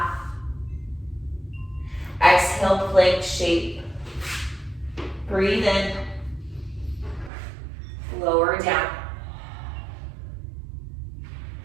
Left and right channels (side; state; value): left; drops out; at 7.3 s